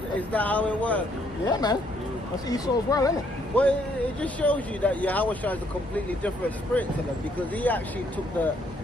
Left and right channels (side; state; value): both; normal; correlation 0.69